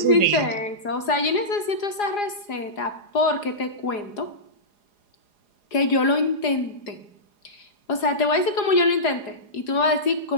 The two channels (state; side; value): late; right; 4.9 ms